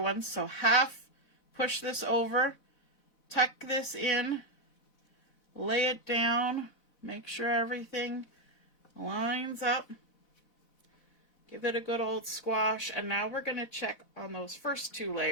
ones. So half push this over, tuck this in, lay it down, make sure everything lines up. Give it a good old squash. And now we're going to check on those first two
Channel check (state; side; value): late; right; 4.1 ms